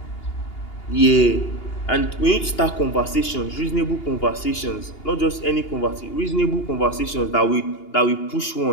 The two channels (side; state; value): right; late; 2.8 ms